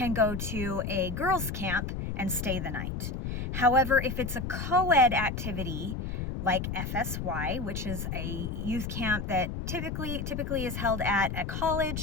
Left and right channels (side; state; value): left; noise; rumble, 4 dB below the sound